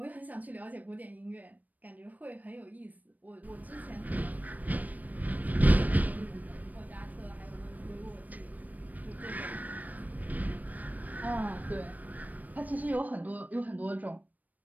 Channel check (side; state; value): left; late; 0.080 ms